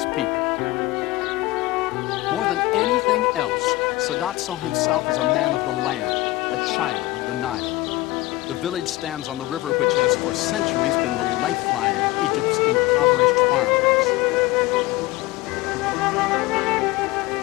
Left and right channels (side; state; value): right; quieter; 18.9 dB